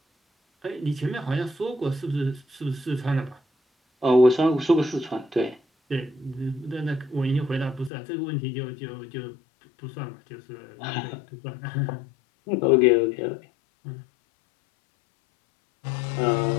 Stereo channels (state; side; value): drops out; right; at 7.9 s